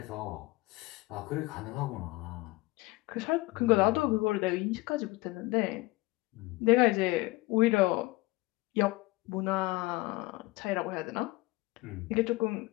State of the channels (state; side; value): quieter; right; 21.5 dB